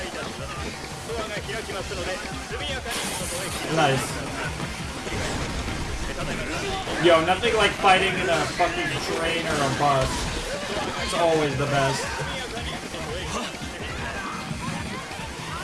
Nice. Yo, nothing like fighting in a fucking train or a bus. It's always the best.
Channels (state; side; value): identical; both; correlation 1.00